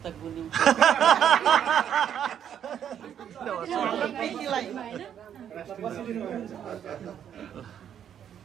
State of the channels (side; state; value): left; quieter; 9.2 dB